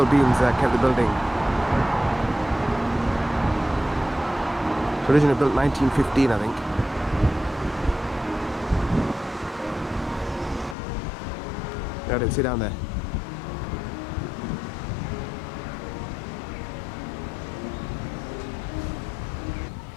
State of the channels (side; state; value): right; drops out; at 10.8 s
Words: beams kept the building. Originally built 1915, I think. Got it, sit down there.